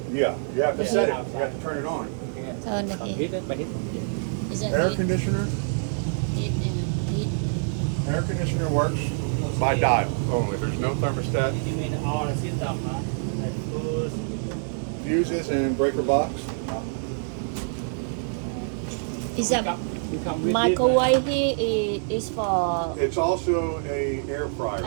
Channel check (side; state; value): left; silent; digital silence